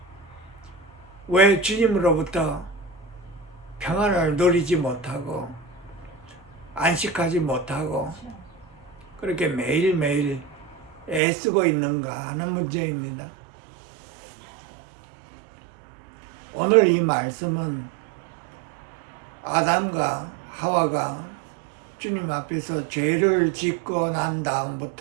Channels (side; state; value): left; drops out; at 11.2 s